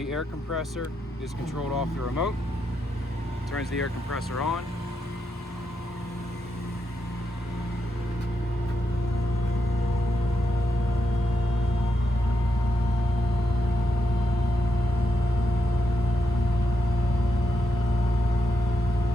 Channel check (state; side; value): normal; both; correlation 0.83